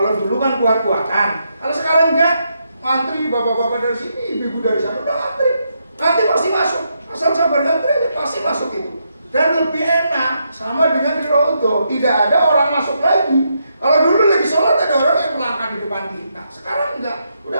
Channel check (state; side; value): inverted; both; correlation -0.80